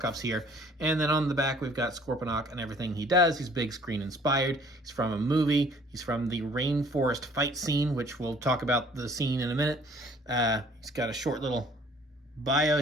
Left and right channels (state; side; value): normal; both; correlation 0.56